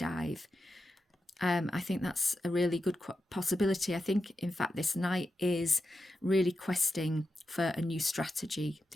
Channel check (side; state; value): both; normal; correlation 0.89